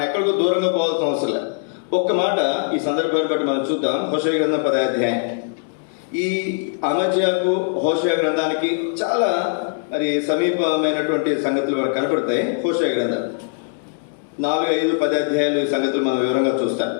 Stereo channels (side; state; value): right; silent; 65 dB below the other